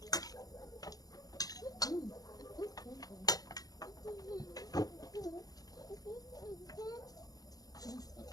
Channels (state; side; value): late; right; 0.18 ms